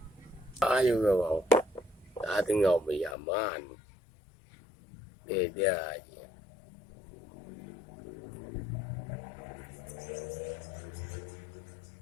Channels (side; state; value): right; drops out; at 3.2 s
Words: ayo go ta từng ngầu bị aman để